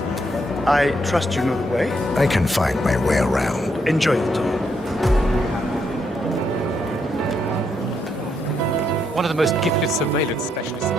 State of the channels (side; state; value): both; normal; correlation 0.76